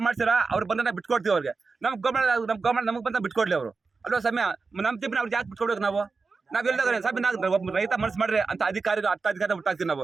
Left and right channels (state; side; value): quieter; left; 4.4 dB